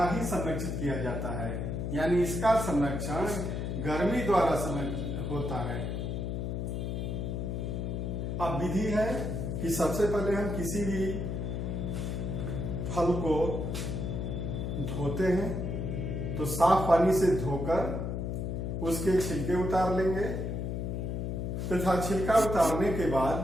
ही संरक्षित किया जाता है, यानी इसका संरक्षण गर्मी द्वारा होता है। अब विधि है कि सबसे पहले हम किसी भी फल को धोते हैं तो साफ पानी से धोकर उसके छिलके उतार लेंगे तथा छिलका उतारने के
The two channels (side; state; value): left; noise; hum, 2 dB below the sound